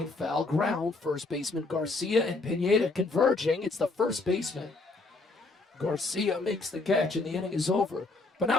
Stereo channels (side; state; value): right; quieter; 3.4 dB